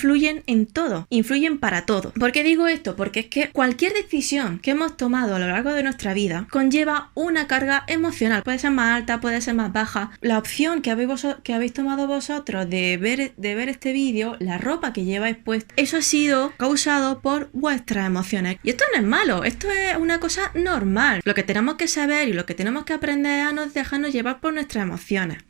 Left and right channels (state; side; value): quieter; left; 27.9 dB